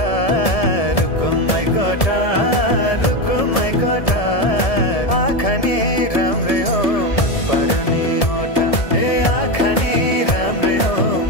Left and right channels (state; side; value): late; right; 1.7 ms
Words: रुकुमै कोटा रुकुमै कोटा आँखा नि राम्रै हो मन पर्ने ओठा ए आँखा नि राम्रै हो